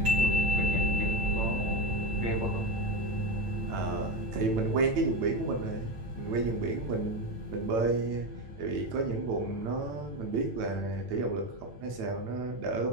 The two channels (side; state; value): left; late; 9.0 ms